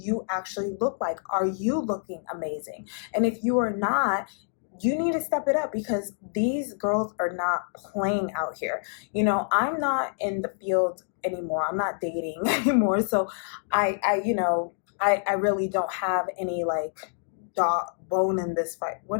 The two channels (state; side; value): silent; right; digital silence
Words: actually look like? Are you looking amazing? And if you are not, you need to step it up, because these girls are not playing out here. I'm not in the field anymore. I'm not dating anymore. So I really don't have any, like, bone in this fight.